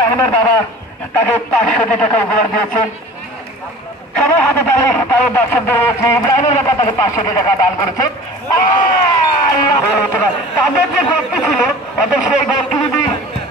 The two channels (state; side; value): normal; both; correlation 0.42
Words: বাবা তাকে 500 টাকা উপহার দিয়েছেন। সবাই হাতে তালে তাদের দর্শকদের রয়েছে, ইব্রাহিমের বাবা তাকে 500 টাকা দান করেছে। তাদের যে গোলটি ছিল অর্থাৎ সেই গোলটি যদি